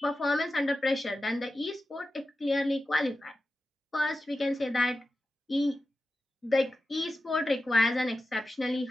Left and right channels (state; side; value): normal; both; correlation 0.92